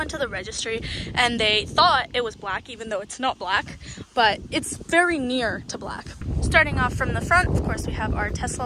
to the registry and they thought it was black, even though it's not black, but it's very near to black. Starting off from the front, of course, we have our Tesla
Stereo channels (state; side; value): identical; both; correlation 1.00